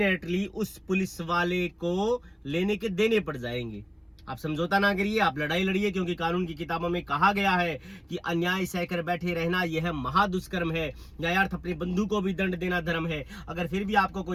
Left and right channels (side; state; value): both; identical; correlation 1.00